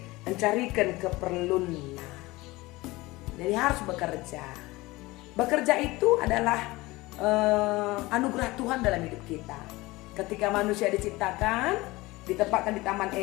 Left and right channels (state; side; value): quieter; right; 20.7 dB